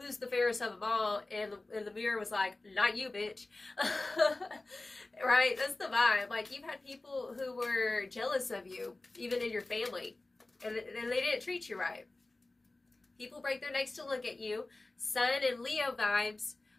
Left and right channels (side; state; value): right; quieter; 3.0 dB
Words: the fairest of them all? And the mirror was like, not you, bitch. Right? That's the vibe. Like you've had people who were jealous of you, even in your family, and they didn't treat you right. People break their necks to look at you. Sun and Leo vibes,